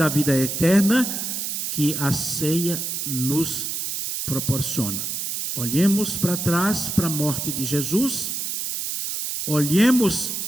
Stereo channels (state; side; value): noise; right; hiss, 3 dB below the sound